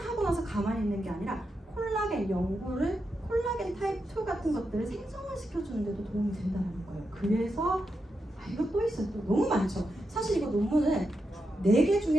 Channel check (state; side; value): normal; both; correlation 0.86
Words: 나서 가만히 있는 게 아니라 콜라겐 연골을, 콜라겐 타입 2 같은 것들을 생성을 시켜주는 데도 도움이 된다는 거예요. 그래서 이거 또 있어요. 또 너무 많죠. 사실 이거 논문은 4개